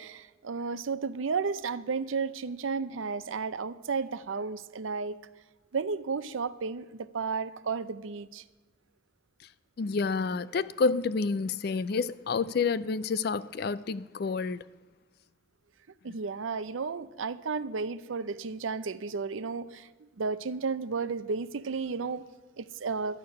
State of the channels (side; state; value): both; normal; correlation -0.12